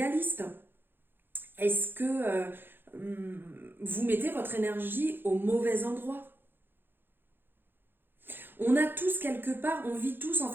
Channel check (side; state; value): left; late; 0.10 ms